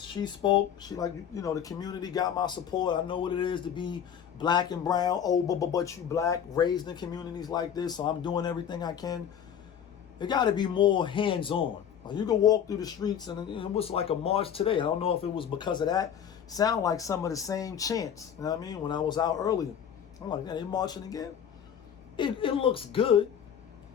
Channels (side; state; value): right; quieter; 8.6 dB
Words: She the community got my support. I know what it is to be black and brown. Oh, but you black, raised in communities like this, so I'm doing everything I can. It got to be more hands-on. You can walk through the streets, and it was like a march today. I don't know if it was because of that. Sound like some of the same chants. You know what I mean? When I was out earlier, I'm like, yeah, they marching again. It looks good,